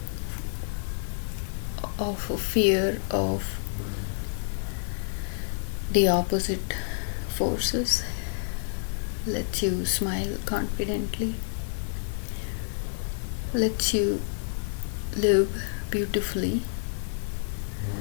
of a fear of the opposite forces, lets you smile confidently, lets you live beautifully,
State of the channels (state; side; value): silent; right; 59 dB below the other